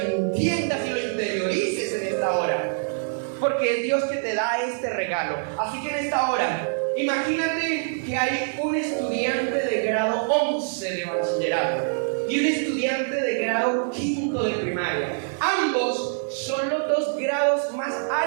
y lo interiorices en esta hora. Porque es Dios que te da este regalo. Así que en esta hora, imagínate que hay un estudiante de grado 11 de bachillerato y un estudiante de grado 5 de primaria. Ambos son los dos grados más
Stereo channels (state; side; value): silent; left; digital silence